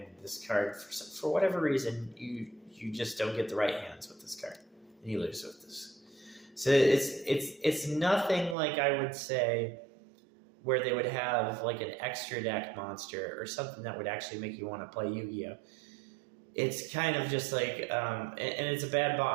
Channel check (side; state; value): left; drops out; at 8.6 s